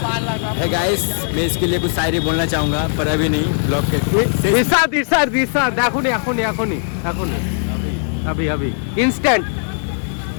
है गाइस, मैं इसके लिए कुछ शायरी बोलना चाहूँगा पर अभी नहीं, ब्लॉग के इरशाद एखुनी अभी इंस्टेंट।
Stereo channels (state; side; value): silent; right; 67 dB below the other